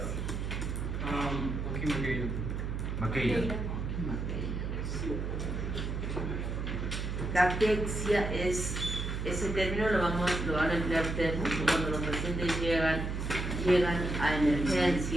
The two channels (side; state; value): right; noise; hum, 3 dB below the sound